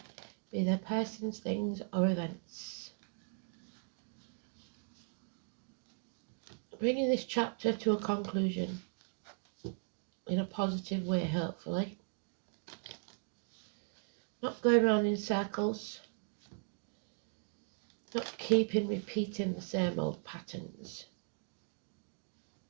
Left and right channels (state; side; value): silent; left; 52 dB below the other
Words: be they persons, things or events. Bringing this chapter to a conclusion in a positive way, hopefully. Not going around in circles. Not repeating the same old patterns.